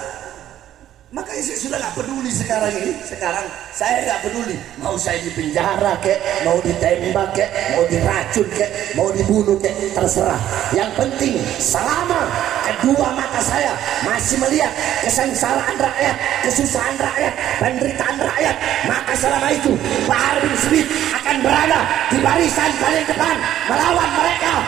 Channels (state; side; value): quieter; left; 12.0 dB